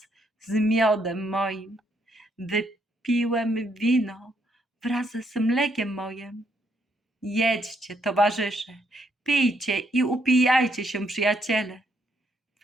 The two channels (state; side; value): normal; both; correlation 0.74